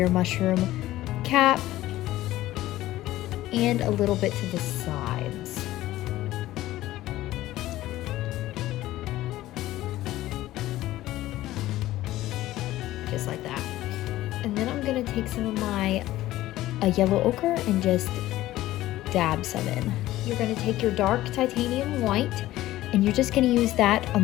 mushroom cap, and a little bit to the sides. Just like that. And then I'm gonna take some of my yellow ochre and just dab some in. You're gonna take your dark titanium white, and you're just gonna use that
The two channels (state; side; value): quieter; right; 15.6 dB